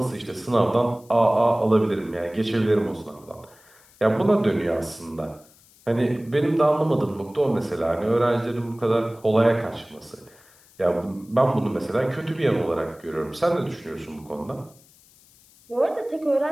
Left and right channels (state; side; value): noise; left; hiss, 28 dB below the sound